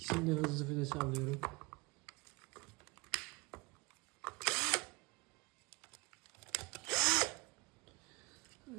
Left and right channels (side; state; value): left; quieter; 25.6 dB